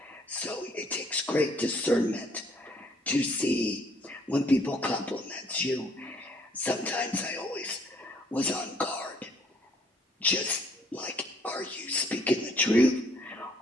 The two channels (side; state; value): both; normal; correlation 0.63